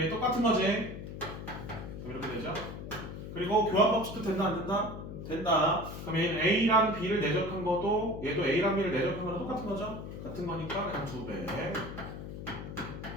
얘 똑같은 거지? 그럼 이렇게 되죠? 그리고 교환 법칙도 된다 안 된다? 된다. 그럼 얘는 A랑 B를 내적한 것도 얘도 A랑 B를 내적한 거랑 똑같은 거죠? 같은 거니까 그냥 2배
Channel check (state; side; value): noise; left; hum, 9 dB below the sound